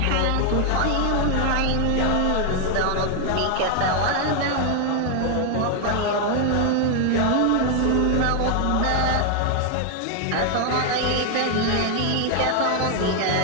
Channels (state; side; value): different; both; correlation 0.00